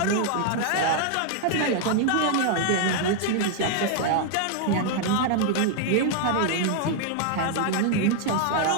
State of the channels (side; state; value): both; different; correlation 0.00